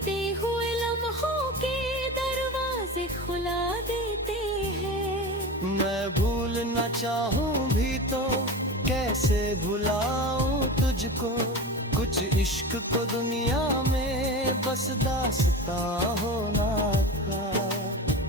हुए लम्हों के दरवाजे खुला देते हैं। मैं भूलना चाहूँ भी तो कैसे भुलाऊं तुझको, कुछ इश्क को दुनिया में बस दास्तां होना था।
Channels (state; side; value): normal; both; correlation 0.28